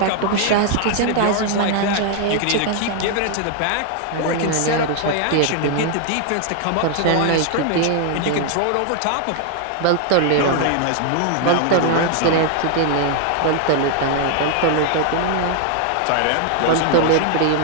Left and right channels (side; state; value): both; different; correlation 0.00